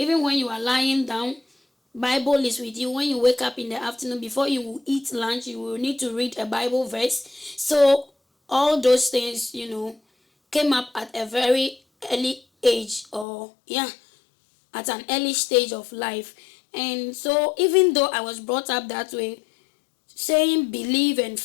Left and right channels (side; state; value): right; drops out; at 13.2 s